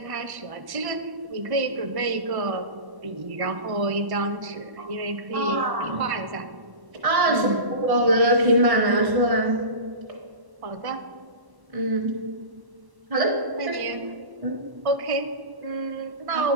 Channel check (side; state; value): left; late; 1.1 ms